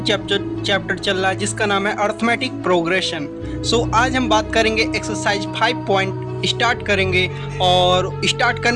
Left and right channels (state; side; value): identical; both; correlation 1.00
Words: चैप्टर चल रहा है जिसका नाम है अर्थमेटिक प्रोग्रेशन। सो आज हम बात करेंगे एक्सरसाइज 5 पॉइंट स्टार्ट करेंगे। और स्टार्ट